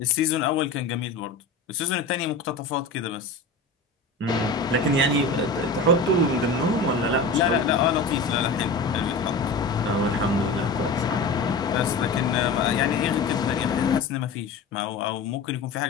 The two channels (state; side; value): quieter; right; 3.7 dB